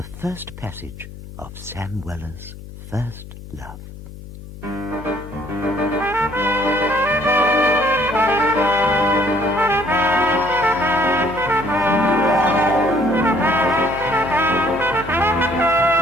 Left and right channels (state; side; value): noise; left; hum, 14 dB below the sound